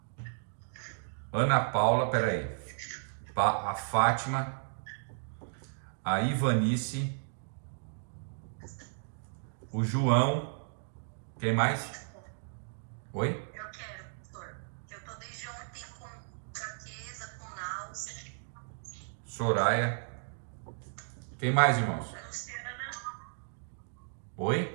Ana Paula, peraí, a Fátima, a Ivanice, o João, quem mais? Oi? Eu quero, pastor. Eu tô desde ontem com fraqueza, com náusea. Soraya. Quem mais, irmãos? A Luciana,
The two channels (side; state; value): left; silent; digital silence